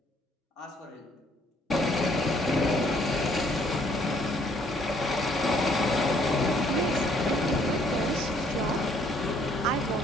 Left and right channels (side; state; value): both; normal; correlation 0.64